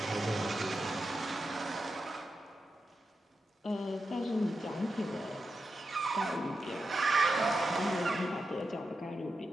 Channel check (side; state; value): both; normal; correlation 0.89